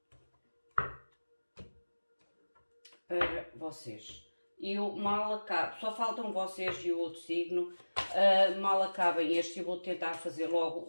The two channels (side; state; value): both; inverted; correlation -1.00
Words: para vocês. Eu mal acabo, só faltam vocês e o outro signo, mal acabem este, eu vou tentar fazer logo